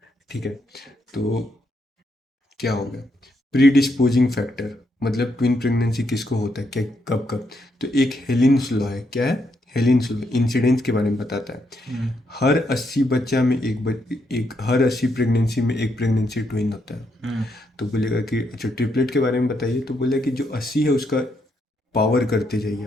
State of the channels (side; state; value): both; normal; correlation 0.78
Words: ठीक है। तो क्या हो गया, प्रीडिस्पोजिंग फैक्टर, मतलब ट्विन प्रेगनेंसी किसको होता है, क्या कब कब। तो एक हेलिन्स लॉ है, क्या है, हेलिन्स लॉ इंसिडेंस के बारे में बताता है। हर 80 बच्चा में एक हर 80 प्रेगनेंसी में एक प्रेगनेंसी ट्विन होता है। तो बोलेगा कि अच्छा ट्रिपलेट के बारे में बताइए, तो बोला कि जो 80 है उसका पावर करते जाइए